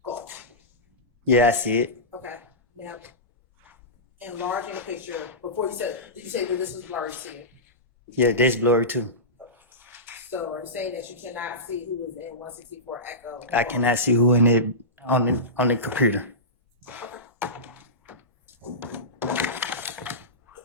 Golf? Yeah, I see it. Okay, now, enlarging the picture, before you said, did you say that this was blurry to you? Yeah, that's blurry too. So are you saying that you cannot see who is in 164 Echo? I cannot see who in it on the computer.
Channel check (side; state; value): both; normal; correlation -0.18